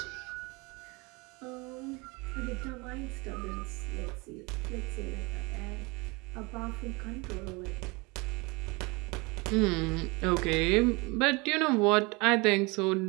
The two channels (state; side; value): quieter; left; 26.8 dB